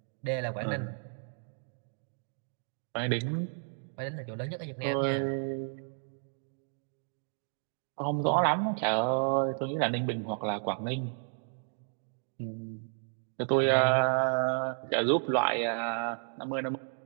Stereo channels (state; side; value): silent; left; 56 dB below the other